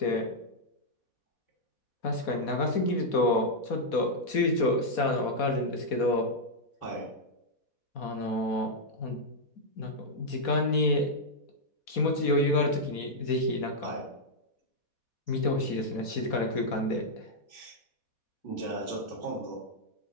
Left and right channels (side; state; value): right; late; 4.2 ms